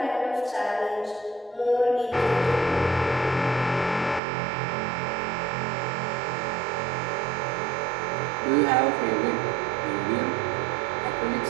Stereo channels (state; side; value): drops out; left; at 4.2 s